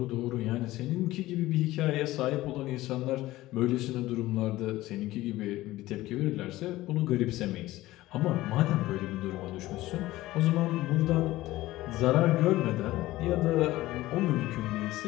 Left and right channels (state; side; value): quieter; right; 17.1 dB